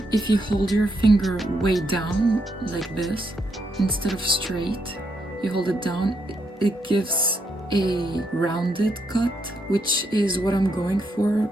if you hold your finger way down like this, instead of straight, you hold it down, it gives a rounded cut, which is what I'm going for,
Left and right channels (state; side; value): normal; both; correlation 0.78